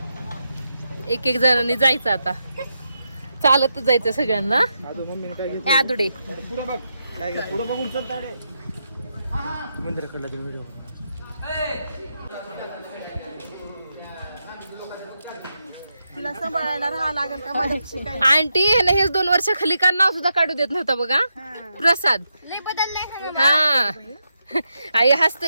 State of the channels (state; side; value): inverted; both; correlation -0.85